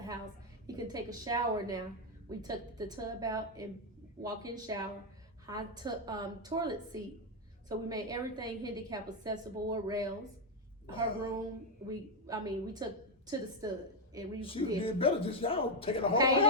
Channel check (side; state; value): both; normal; correlation 0.03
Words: house. He can take a shower now. We took the tub out and walk-in shower, hot toilet seat. So we made everything handicap accessible with rails. Her room, we took to the stud, and we did better. Just y'all taking the whole